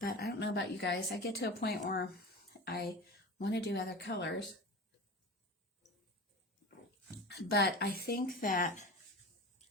I don't know about you guys. I get to a point where I want to do other colors, but I think that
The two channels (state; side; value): normal; both; correlation 0.31